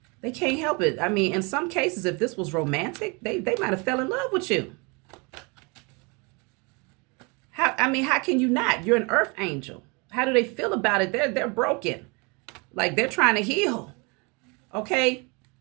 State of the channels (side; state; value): left; quieter; 30.2 dB